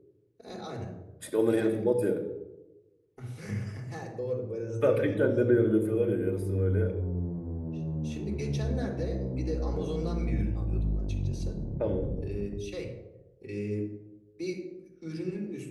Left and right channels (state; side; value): identical; both; correlation 1.00